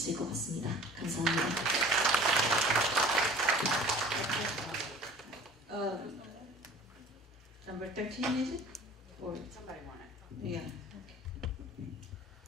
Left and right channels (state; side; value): normal; both; correlation 0.45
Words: 것 같습니다. 감사합니다. Number 13 is it? Or somebody want it? Yeah.